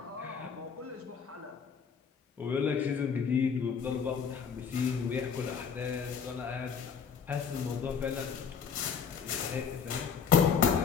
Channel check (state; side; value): quieter; right; 6.7 dB